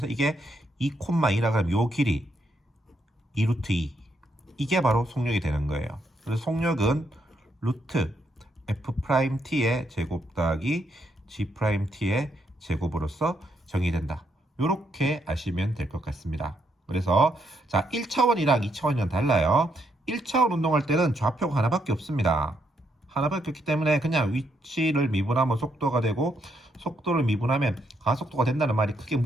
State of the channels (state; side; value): normal; both; correlation 0.76